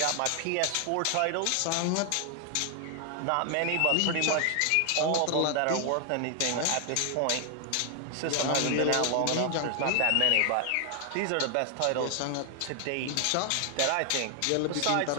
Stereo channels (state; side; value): different; both; correlation 0.00